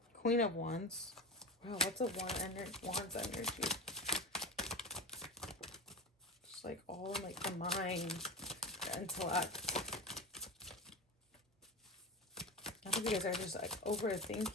Queen of Wands. Wow, what's a Wands energy? Just like all like the mind, the intellect. I think you guys are just like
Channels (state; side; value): normal; both; correlation 0.24